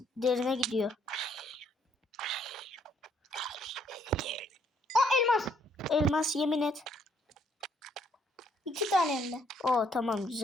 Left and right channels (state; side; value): normal; both; correlation 0.68